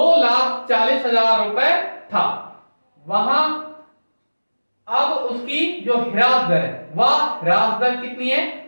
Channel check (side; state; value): both; inverted; correlation -1.00